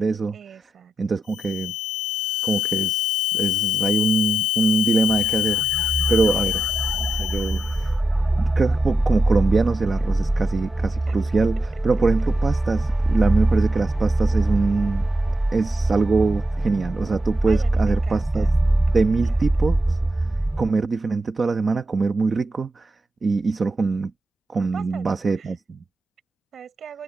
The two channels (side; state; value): both; normal; correlation 0.87